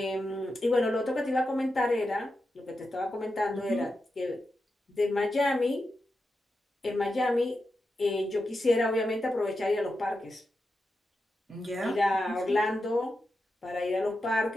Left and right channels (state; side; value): normal; both; correlation 0.89